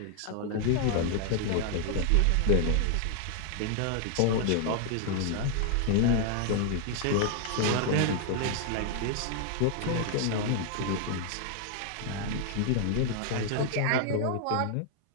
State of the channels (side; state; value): both; different; correlation 0.00